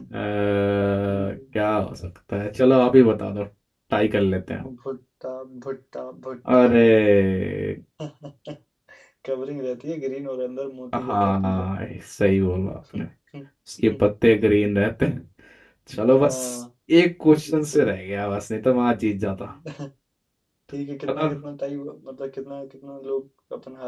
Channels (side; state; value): both; identical; correlation 1.00